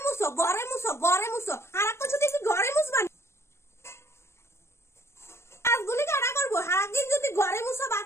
মুছো ঘরে মুছো ঘরে মুছো আর একটা যদি ঘরে মুছবা কাজগুলি কারা করবো সারাদিন যদি ঘরে মুছো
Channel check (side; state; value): right; late; 0.13 ms